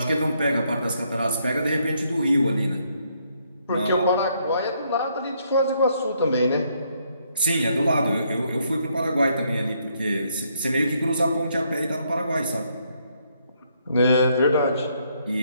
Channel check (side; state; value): both; inverted; correlation -0.72